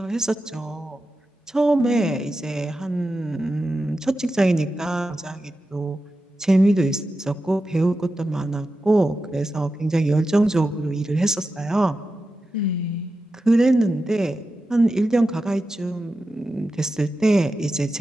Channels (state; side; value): normal; both; correlation 0.91